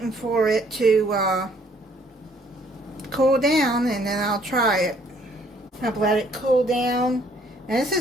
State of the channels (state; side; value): normal; both; correlation 0.63